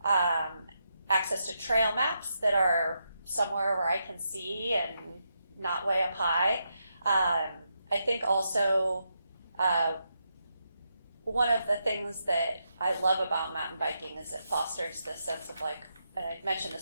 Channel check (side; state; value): both; inverted; correlation -0.83